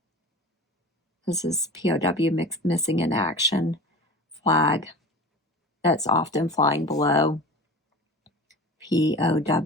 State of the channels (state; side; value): normal; both; correlation 0.35